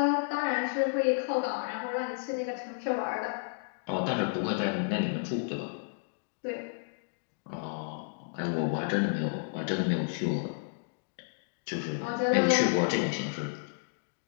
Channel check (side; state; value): right; silent; digital silence